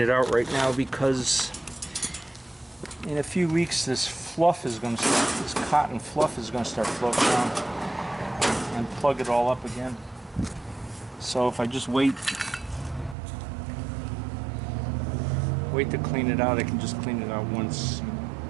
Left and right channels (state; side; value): drops out; left; at 13.2 s